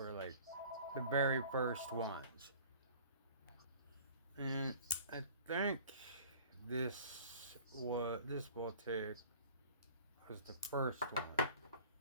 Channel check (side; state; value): both; inverted; correlation -0.47